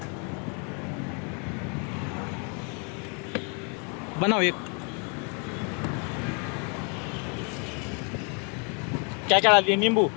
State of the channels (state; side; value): quieter; right; 37.0 dB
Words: बनाओ एक. क्या क्या डाल दिए? नींबू.